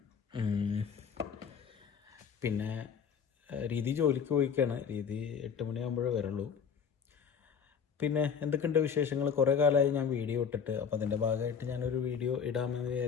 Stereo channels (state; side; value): quieter; right; 6.8 dB